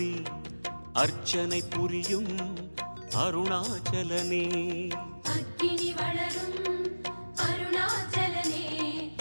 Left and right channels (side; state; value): both; inverted; correlation -1.00